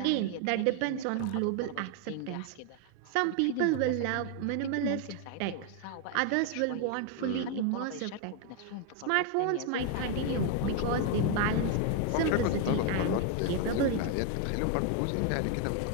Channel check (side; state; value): both; different; correlation 0.01